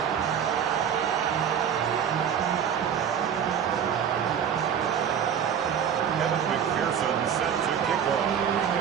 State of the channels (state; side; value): quieter; left; 8.3 dB